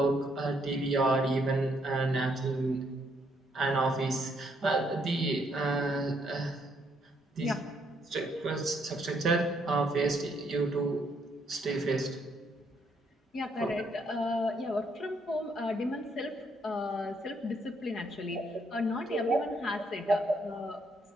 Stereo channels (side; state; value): both; normal; correlation 0.72